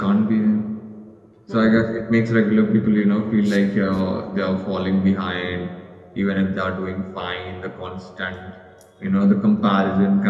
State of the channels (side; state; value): both; identical; correlation 1.00